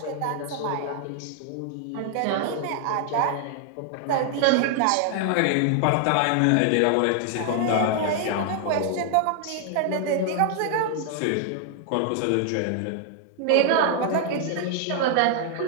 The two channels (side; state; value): both; different; correlation 0.00